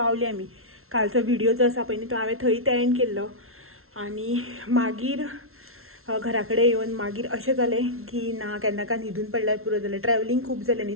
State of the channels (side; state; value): left; late; 0.62 ms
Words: आमी. कालचो व्हिडिओ जो आसा पळय न्ही तो हांवें थंय एंड केल्लो. आनी मागीर घरा कडेन येवन मागीर अशें जालें की ना केन्ना न्हिदून पडल्यार पुरो जालें. ट्रॅवलींग खूब जालें न्ही.